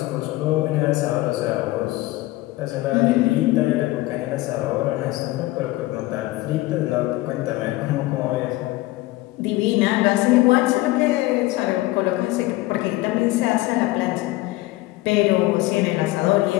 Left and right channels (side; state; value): right; quieter; 18.7 dB